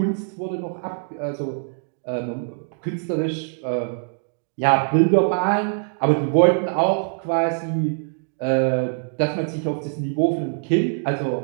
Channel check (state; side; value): silent; left; digital silence